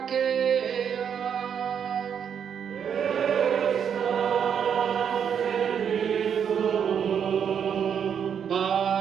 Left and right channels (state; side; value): quieter; left; 7.9 dB